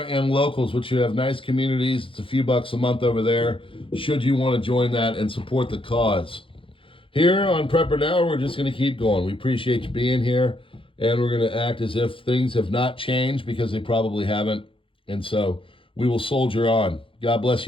and Locals, which you have nice communities. It's a few bucks a month over there, should you want to join that and support the cause. Here on PrepperNow, we're just going to keep going. We appreciate you being here, and we're going to act as if things have not changed, because they probably haven't. And so we will soldier on. God bless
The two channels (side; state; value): right; late; 0.25 ms